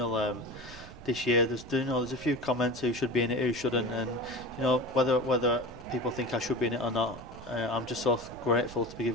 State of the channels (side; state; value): right; noise; rumble, 17 dB below the sound